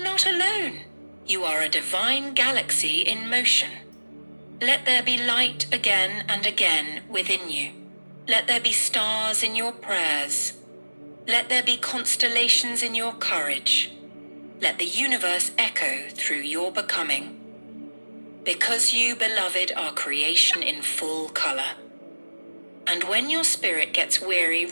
alone. You are a divine galaxy in motion. Let there be light again and again within you. Let there be stars in your prayers. Let there be constellations in your courage. Let the universe echo through your becoming. Because you, beloved, are creation in full color. And when your spirit gets weary,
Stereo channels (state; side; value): inverted; both; correlation -1.00